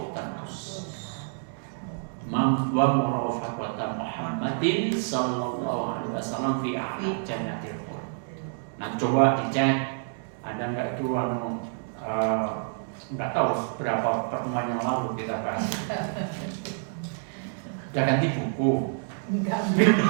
Wa murafaqata Muhammadin sallallahu alaihi wasallam fi a'la jannatil khuld. Nah, coba dicek ada enggak itu nggak tahu berapa pertemuan yang lalu kita bahas. Udah ganti buku.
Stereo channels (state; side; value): silent; left; 59 dB below the other